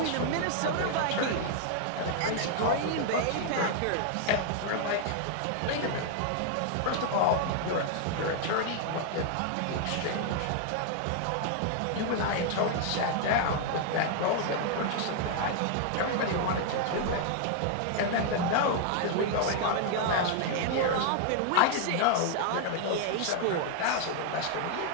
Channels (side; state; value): both; different; correlation 0.00